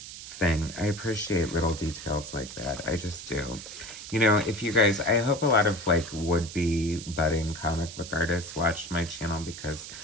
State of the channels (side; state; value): right; noise; hiss, 12 dB below the sound